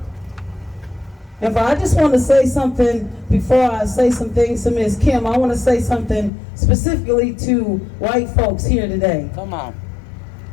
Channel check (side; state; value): right; drops out; at 6.3 s